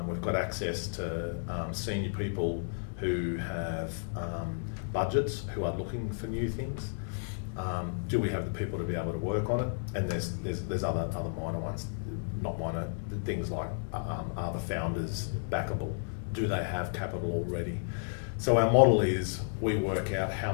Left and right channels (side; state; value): right; silent; digital silence